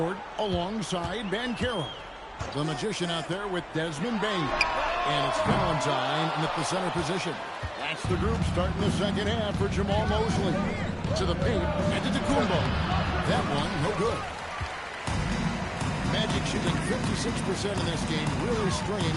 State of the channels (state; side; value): identical; both; correlation 1.00